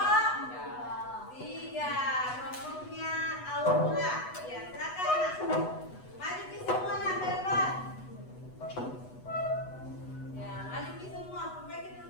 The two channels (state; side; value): late; right; 8.1 ms